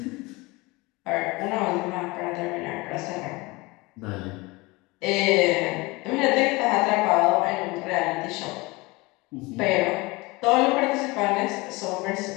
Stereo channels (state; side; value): quieter; right; 23.5 dB